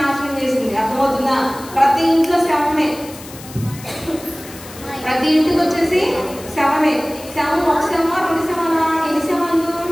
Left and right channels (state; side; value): noise; left; hiss, 17 dB below the sound